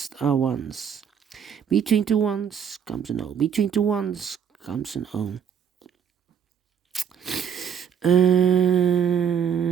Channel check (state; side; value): quieter; left; 7.9 dB